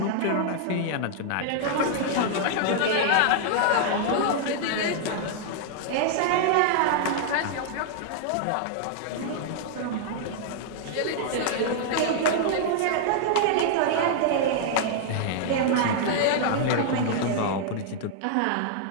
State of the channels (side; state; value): both; different; correlation -0.01